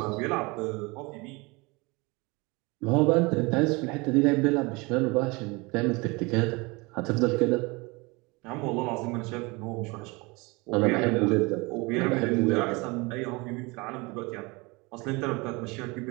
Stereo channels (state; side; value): quieter; left; 26.0 dB